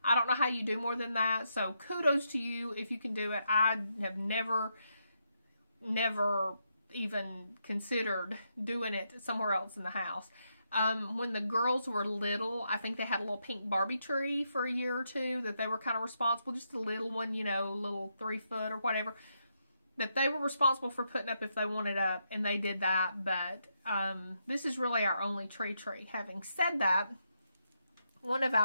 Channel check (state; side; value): inverted; both; correlation -0.81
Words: I don't know how you do more than that. So kudos to you if you can do it. I have never even considered doing it somewhere else in the house. When the girls were little, I think they had a little pink Barbie tree for a year or two that they were kind of responsible, just a little one, you know, little 3 foot or whatever, that they were responsible for putting up if they wanted up, and they did that. But this is really our only tree. Having said that, one of